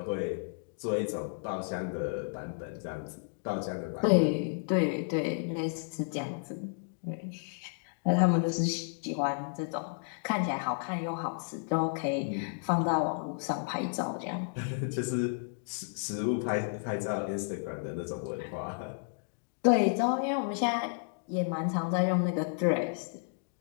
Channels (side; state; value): right; silent; digital silence